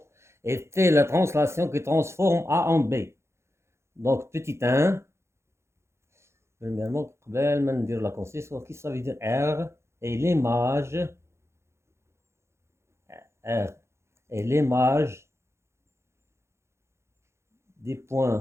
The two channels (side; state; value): left; late; 0.13 ms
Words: et T la translation qui transforme A en B. Donc, petit 1. Premièrement, قبل ما ندير la construction, qu'est-ce que ça veut dire R et l'image R et l'image des